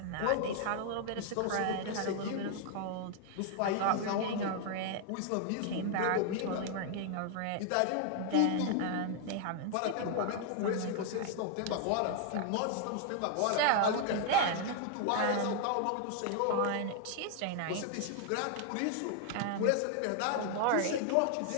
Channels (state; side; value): different; both; correlation 0.00